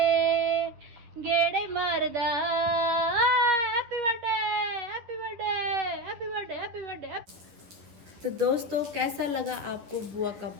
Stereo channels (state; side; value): late; left; 10 ms